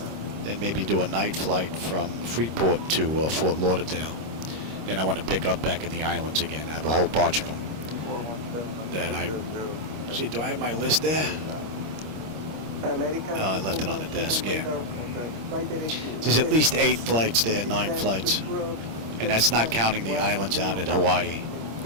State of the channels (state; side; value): late; left; 26 ms